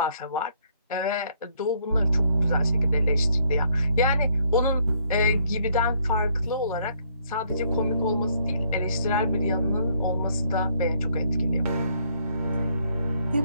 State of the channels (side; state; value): both; inverted; correlation -0.67